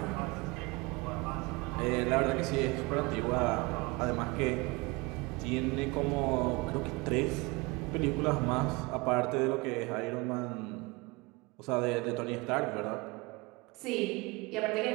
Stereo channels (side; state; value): left; quieter; 25.0 dB